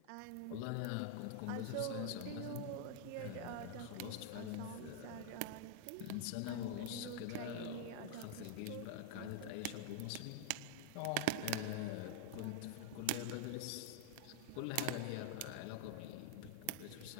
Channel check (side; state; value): both; different; correlation 0.00